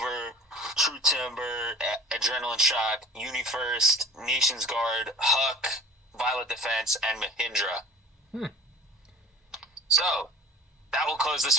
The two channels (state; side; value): normal; both; correlation 0.43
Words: True Timber, Adrenaline Shock, UniFirst, Nations Guard, Huck, Violet Defense, and Mahindra. So, that will close this